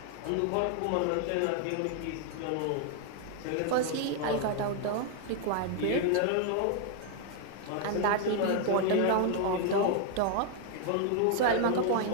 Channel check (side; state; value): both; different; correlation 0.00